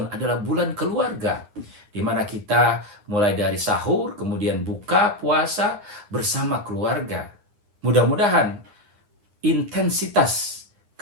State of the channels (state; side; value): late; left; 9.7 ms